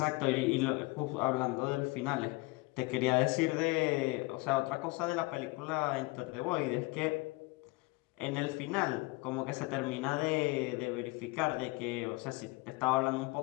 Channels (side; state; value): right; quieter; 24.5 dB